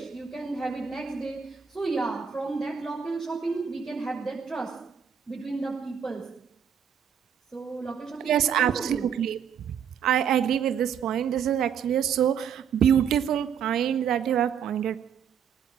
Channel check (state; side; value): quieter; left; 7.9 dB